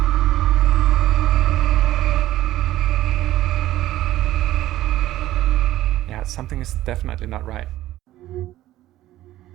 Yeah, something is definitely not right.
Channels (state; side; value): quieter; left; 14.8 dB